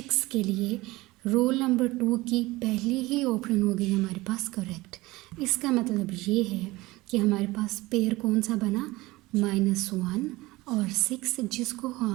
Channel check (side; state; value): left; quieter; 20.2 dB